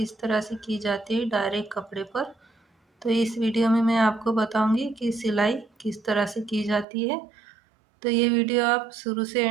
तरह से की जाती है डायरेक्ट कपड़े पर। तो इस वीडियो में मैं आपको बताऊंगी कि सिलाई किस तरह से की जाती है। तो ये वीडियो आप शुरू से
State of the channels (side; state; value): left; drops out; at 6.9 s